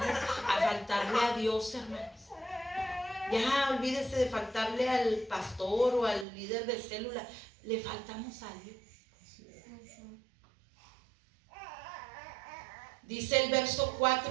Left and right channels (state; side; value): drops out; left; at 6.2 s